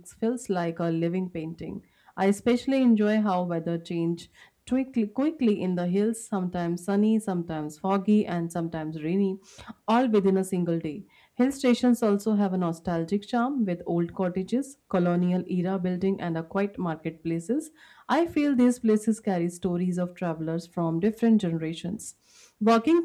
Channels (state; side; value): identical; both; correlation 1.00